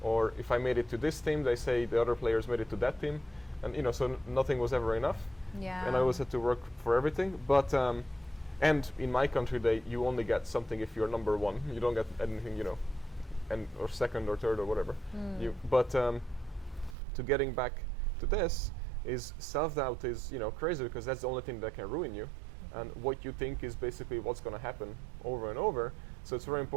Or if I made it to this team, they say the other players made it to that team. And you know, so nothing was ever enough. Yeah. And I always had to work for everything. But and in my country, you only get something if you're number one. You don't get anything, you know, or second or third or whatever. But to getting back to this is self-doubt is, you know, crazy because that's the only thing that can ruin you. And what you think is basically what's going to happen over and over. So it's very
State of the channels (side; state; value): left; drops out; at 16.9 s